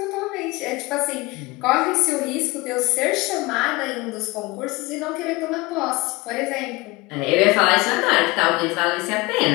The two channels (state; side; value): quieter; right; 22.7 dB